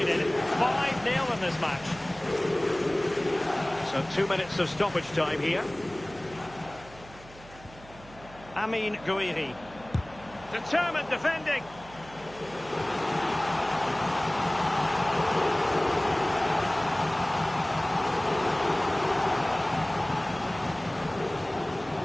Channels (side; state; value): right; noise; hum, 21 dB below the sound